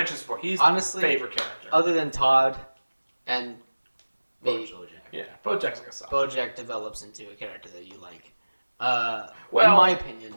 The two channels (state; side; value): inverted; both; correlation -1.00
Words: this before. He's honestly my favorite character. Other than Todd and maybe Bojack. Yeah, Bojack's like a son. Bojack develops into a character that you like. Well, in my opinion.